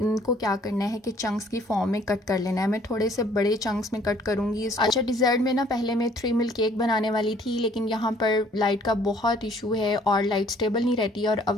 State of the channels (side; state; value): both; normal; correlation 0.59